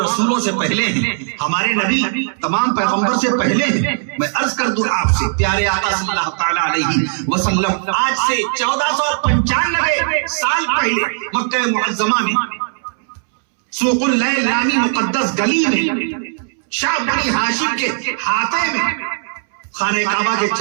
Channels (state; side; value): silent; left; 68 dB below the other